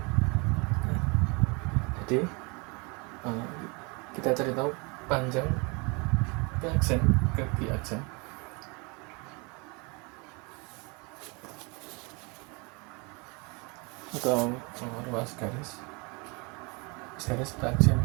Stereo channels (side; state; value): left; quieter; 29.9 dB